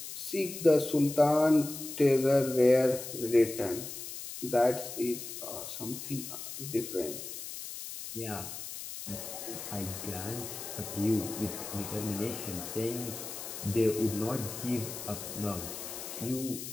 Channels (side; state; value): left; noise; hiss, 9 dB below the sound